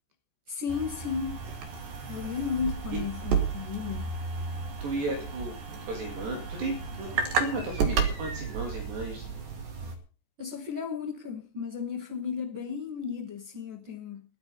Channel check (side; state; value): left; late; 14 ms